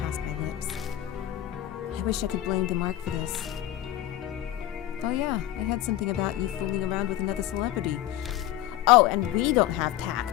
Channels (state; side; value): quieter; right; 13.4 dB